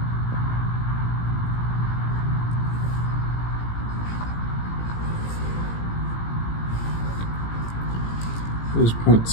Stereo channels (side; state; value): right; late; 18 ms